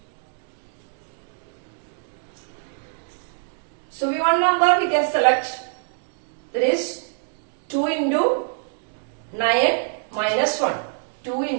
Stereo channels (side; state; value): left; silent; digital silence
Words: we one number we can select, that is 2 into 9 minus 1. 2